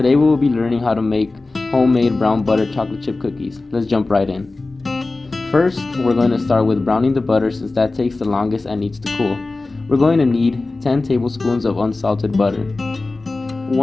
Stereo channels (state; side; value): quieter; right; 3.3 dB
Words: we will be learning how to make homemade brown butter chocolate chip cookies. Let's jump right in. First, we're going to start with browning the butter since that takes the longest and needs to cool. We're going to need 10 tablespoons of unsalted butter.